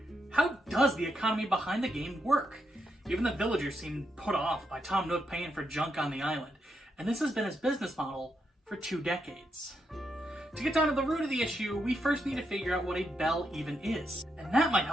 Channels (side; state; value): both; normal; correlation 0.82